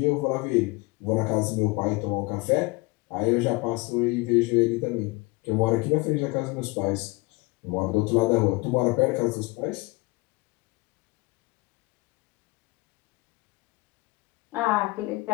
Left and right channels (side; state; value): right; quieter; 25.3 dB